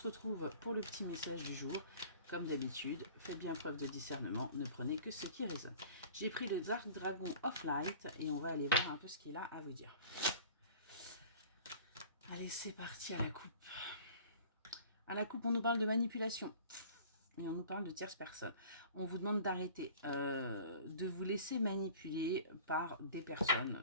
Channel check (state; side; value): inverted; both; correlation -0.45